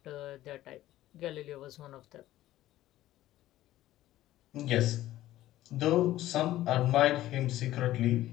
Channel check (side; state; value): right; quieter; 14.7 dB